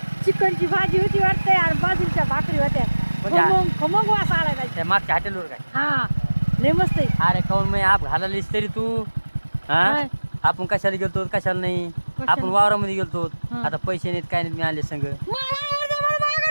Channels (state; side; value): inverted; both; correlation -1.00